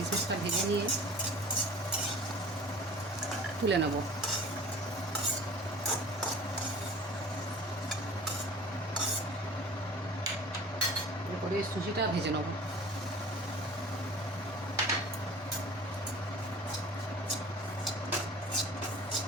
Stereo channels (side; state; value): both; normal; correlation 0.43